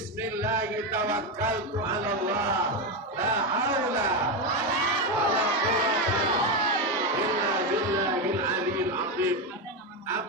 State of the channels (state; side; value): normal; both; correlation 0.11